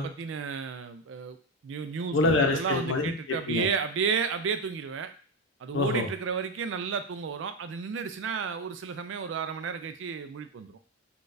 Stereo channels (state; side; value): normal; both; correlation 0.10